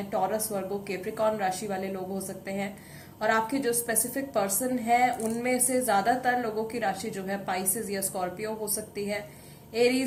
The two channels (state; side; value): identical; both; correlation 1.00